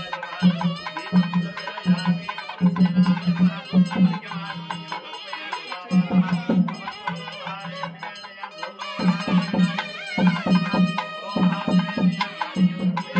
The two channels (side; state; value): both; identical; correlation 1.00